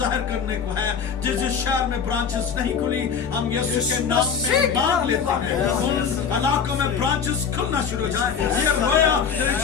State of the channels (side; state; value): right; quieter; 6.7 dB